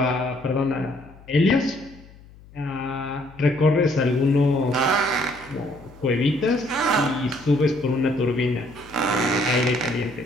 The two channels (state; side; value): noise; left; hum, 23 dB below the sound